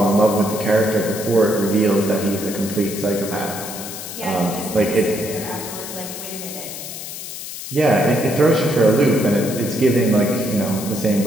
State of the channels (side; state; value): left; noise; hiss, 9 dB below the sound